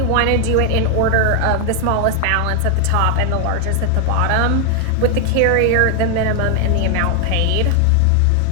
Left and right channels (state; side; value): different; both; correlation 0.00